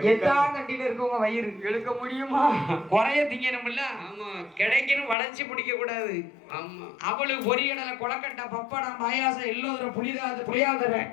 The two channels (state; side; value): drops out; right; at 5.2 s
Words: எத்தா கண்டில இருக்கவங்க வயிறு எடுக்க முடியுமா? குறைய திங்கணும்ல. ஆமா, கிடைக்கணும் வளைச்சு பிடிக்க கூடாது. ஆமா, அவளுக்கு பொரியடலை கொலக்கட்டை பப்படம் பாயாசம் எல்லோரும் புளியாதர